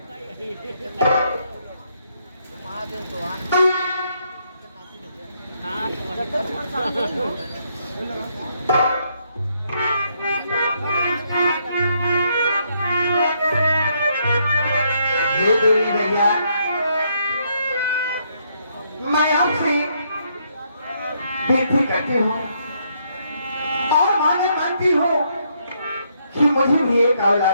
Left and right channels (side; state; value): both; inverted; correlation -0.74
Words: भैया मैं आपसे विनती करती हूँ और मांगती हूँ कि मुझे भी एक